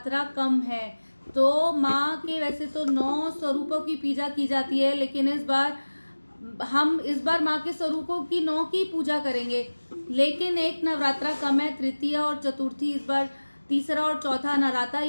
कम है तो माँ के वैसे तो 9 स्वरूपों की पूजा की जाती है, लेकिन इस बार माँ के स्वरूपों की 9 की पूजा करेंगे, लेकिन एक नवरात्रा कम है। तृतीय और चतुर्थी इस बार तीसरा और चौथा नवरात्रा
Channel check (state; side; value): inverted; both; correlation -1.00